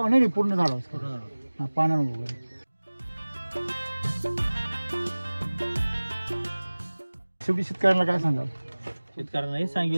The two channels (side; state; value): both; inverted; correlation -1.00